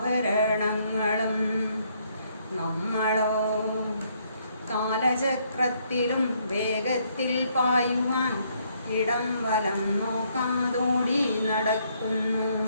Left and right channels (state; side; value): inverted; both; correlation -0.70